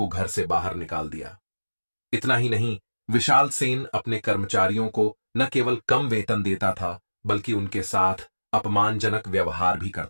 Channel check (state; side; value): inverted; both; correlation -1.00